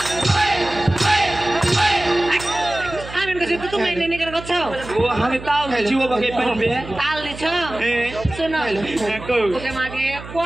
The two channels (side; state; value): right; noise; hum, 14 dB below the sound